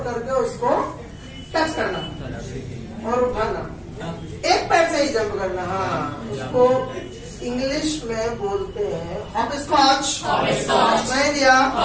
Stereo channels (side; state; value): both; identical; correlation 1.00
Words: करके उसको टच करना और उठाना, एक पैर से ही जंप करना। हाँ, उसको इंग्लिश में बोलते हैं हॉपस्कॉच। मैं दिया